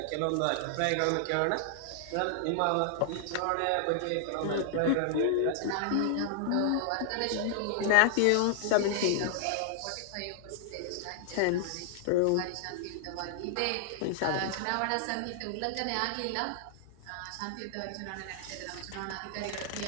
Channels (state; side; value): different; both; correlation -0.01